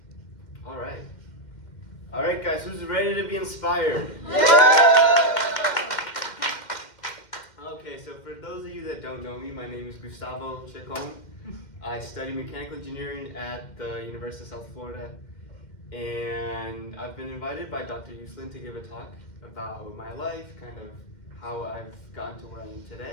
All right. All right, guys, who's ready to be inspired? Okay, so for those of you that don't know me, my name is Gustavo Ceccon. I study mechanical engineering at the University of South Florida, and I've been invited by Dr. Uslin to give a talk about my life, kind of how I've gotten to where I am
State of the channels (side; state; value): right; late; 2.1 ms